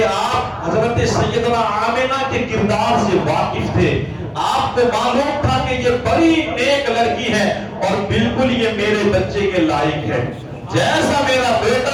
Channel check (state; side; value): identical; both; correlation 1.00